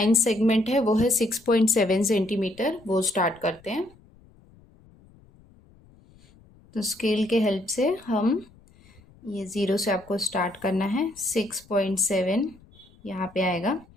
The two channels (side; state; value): left; noise; rumble, 27 dB below the sound